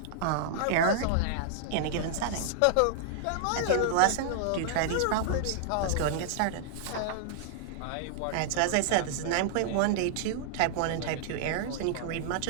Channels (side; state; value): both; different; correlation -0.01